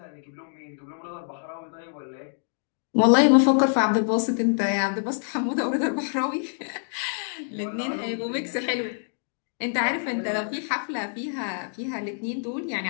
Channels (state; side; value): silent; right; digital silence